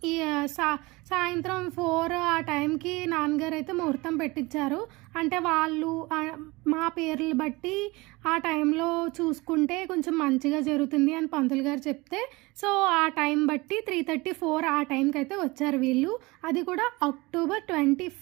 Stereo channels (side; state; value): left; quieter; 23.2 dB